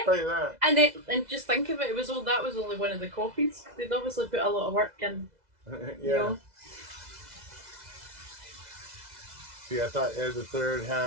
tell you that. And just think of it. That was only one of the copies. They'd obviously put a lot of work in. Yeah. You know. See, I thought Ed III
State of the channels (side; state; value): left; late; 2.0 ms